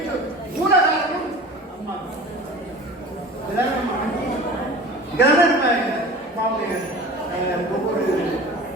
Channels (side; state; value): both; normal; correlation 0.39